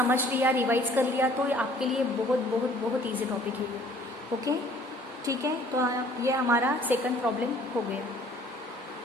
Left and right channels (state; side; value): normal; both; correlation 0.55